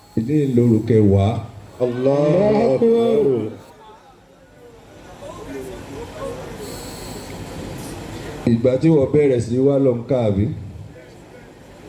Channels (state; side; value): identical; both; correlation 1.00